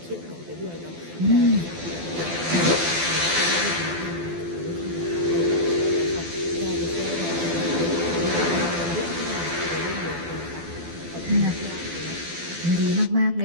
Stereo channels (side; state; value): left; late; 12 ms